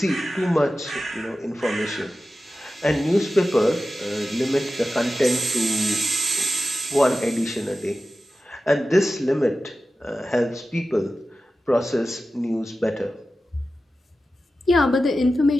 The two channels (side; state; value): both; normal; correlation 0.93